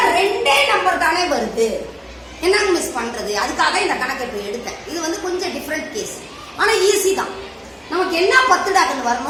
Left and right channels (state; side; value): identical; both; correlation 1.00